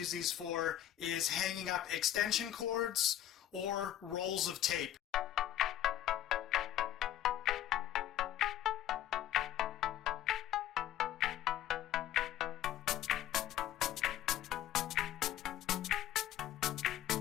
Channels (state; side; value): quieter; right; 11.9 dB